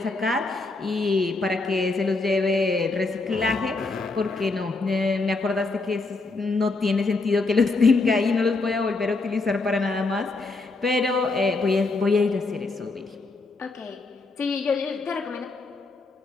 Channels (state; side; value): quieter; right; 3.6 dB